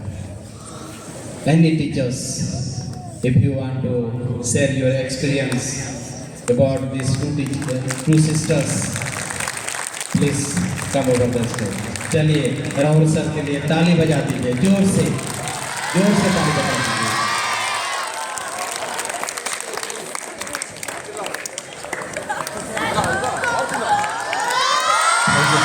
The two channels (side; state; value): both; identical; correlation 1.00